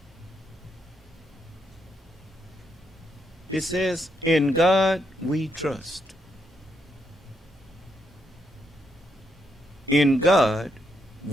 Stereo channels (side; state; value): both; normal; correlation 0.79